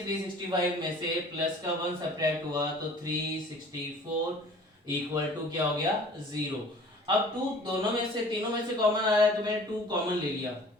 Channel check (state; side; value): normal; both; correlation 0.48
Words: 365 में से प्लस का 1 सब्ट्रैक्ट हुआ तो 364 इक्वल टू क्या हो गया 0। अब 2 दोनों में से तीनों में से कॉमन आ रहा है तो मैंने 2 कॉमन ले लिया।